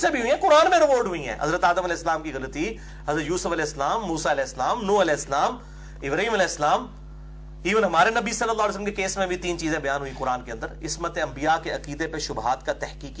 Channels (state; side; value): identical; both; correlation 1.00